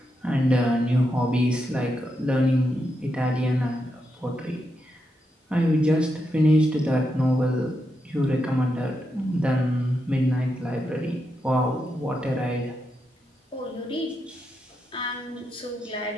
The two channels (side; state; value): both; normal; correlation 0.84